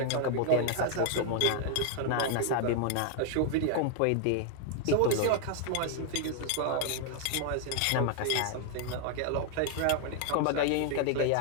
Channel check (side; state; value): both; different; correlation 0.00